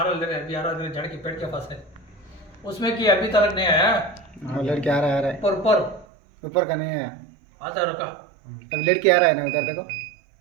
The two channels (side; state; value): left; drops out; at 6.1 s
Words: रहा है अभी आ रहा है जड़ के पेट के पास है उसमें कि अभी तक नहीं आया हाँ लड़की आ रहा है ऊपर ऊपर ऊपर का नहीं है आता है रुका अब लड़की आ रहा है ना उधर देखो